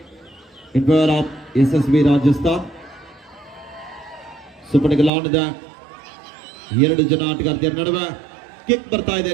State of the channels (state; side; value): drops out; left; at 5.1 s